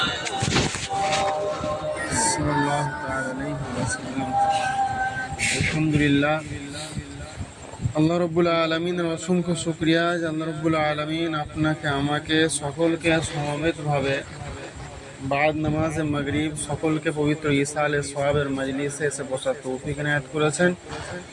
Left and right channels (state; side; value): identical; both; correlation 1.00